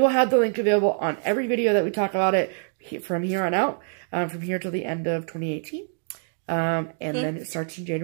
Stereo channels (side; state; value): left; silent; 62 dB below the other